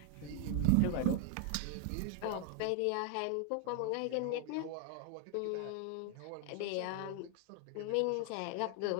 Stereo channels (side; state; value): both; different; correlation 0.01